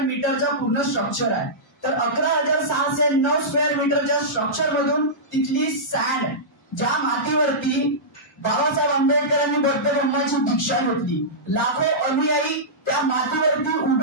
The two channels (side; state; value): both; normal; correlation -0.15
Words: पूर्ण स्ट्रक्चर आहे. तर 11,609 स्क्वेअर मीटरच्या स्ट्रक्चर मधून तिथली सँड ज्या मातीवरती बाबासाहेब आंबेडकरांनी बौद्ध धर्माची दीक्षा घेतली, लाखो अनुयायी त्या मातीवरती